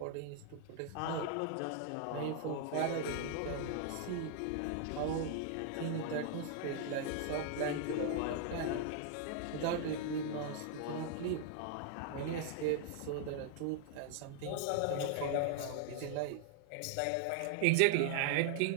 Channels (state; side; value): different; both; correlation 0.00